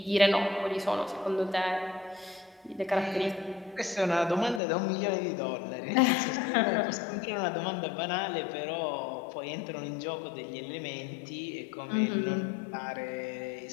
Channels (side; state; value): right; drops out; at 4.6 s